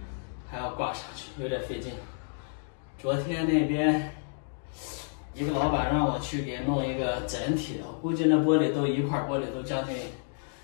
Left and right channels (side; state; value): right; silent; digital silence